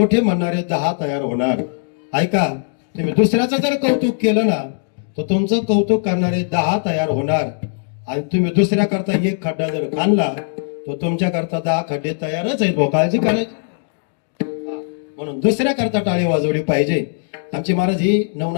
म्हणणारे 10 तयार होणार. ऐका, तुम्ही दुसऱ्याचं जर कौतुक केलं ना, तर तुमचं कौतुक करणारे 10 तयार होणार. आणि तुम्ही दुसऱ्या करता एक खड्डा जर काढला, तर तुमच्या करता 10 खड्डे तयारच आहेत. काळजी करायची. म्हणून दुसऱ्या करता टाळी वाजवली पाहिजे. आमचे महाराज ही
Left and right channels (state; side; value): silent; right; digital silence